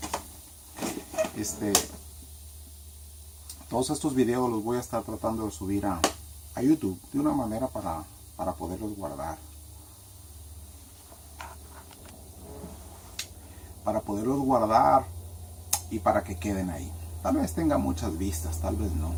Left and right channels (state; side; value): identical; both; correlation 1.00